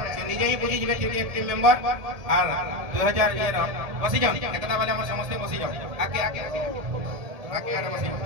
निजे ही बुझी जेबे एक टीम मेंबर और 2000 ये बसी जाओ एकता वाले हम समस्त बसी जाओ आगे आगे आगे आगे बसी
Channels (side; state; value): left; late; 1.8 ms